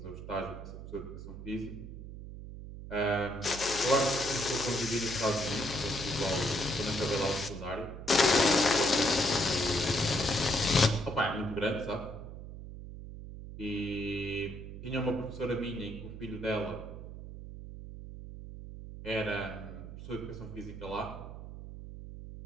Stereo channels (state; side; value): noise; right; hum, 11 dB below the sound